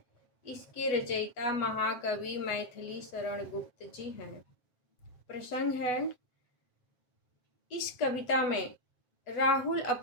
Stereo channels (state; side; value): late; right; 8.1 ms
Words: इसके रचयिता महाकवि मैथिली शरण गुप्त जी हैं। प्रसंग है: इस कविता में राहुल